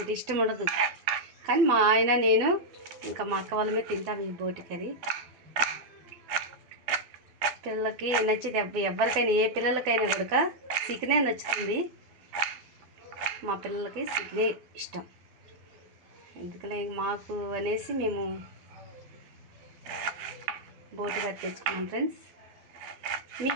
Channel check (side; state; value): left; late; 12 ms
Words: ఇష్టం ఉండదు, కానీ మా ఆయన నేను ఇంకా మా అక్క వాళ్ళమే తింటాం ఈ బోటి కర్రీ. పిల్లలకి నచ్చింది, ఎవరికైనా ఏ పిల్లలకైనా కూడా చికెనే నచ్చుతుంది. మా పిల్లలకి చికెనే ఇష్టం. ఎందుకలే మాకు అనేసి మేము బోటి కర్రీ తెచ్చుకున్నాం. ఫ్రెండ్స్,